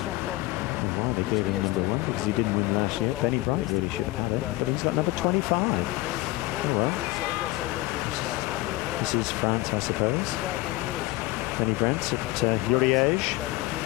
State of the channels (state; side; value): quieter; right; 19.9 dB